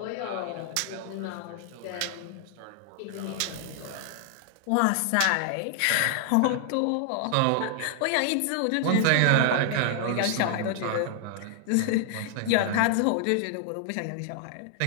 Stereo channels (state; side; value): different; both; correlation 0.00